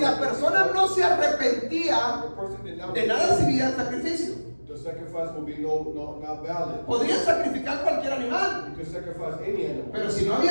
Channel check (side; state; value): both; inverted; correlation -1.00